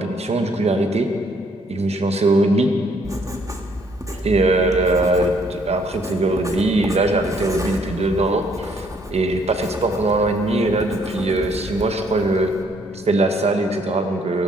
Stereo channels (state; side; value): normal; both; correlation 0.66